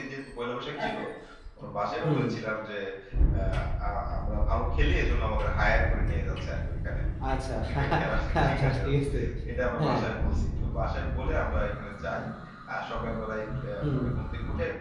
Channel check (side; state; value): both; identical; correlation 1.00